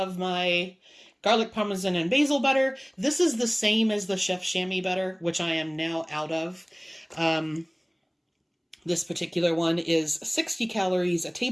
my garlic parmesan and basil butter. This is the same as the Chef Chamois butter, which I am now out of. This particular one is 60 calories a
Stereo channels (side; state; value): both; identical; correlation 1.00